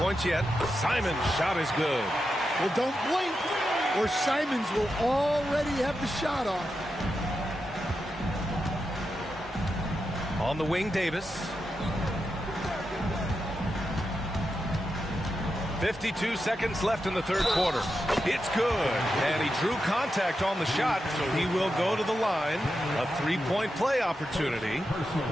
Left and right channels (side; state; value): both; normal; correlation 0.88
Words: points yet. Simon's shot is good. Well, don't blink, or Simons will already have the shot off. On the wing, Davis. 52 seconds left in the third quarter. It's good. And he drew contact on the shot, so he will go to the line. A three-point play opportunity.